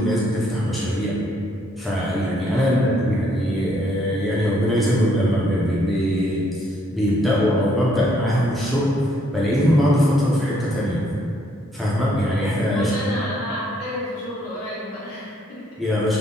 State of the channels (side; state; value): both; normal; correlation 0.69